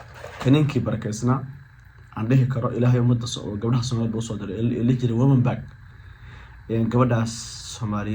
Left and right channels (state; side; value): identical; both; correlation 1.00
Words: kaninkii barakaysnaa aan dhihi karo ilaahay ummadda oo gabdhaha Soomaaliyeed u soo diray ee jiray woman back gabadhaas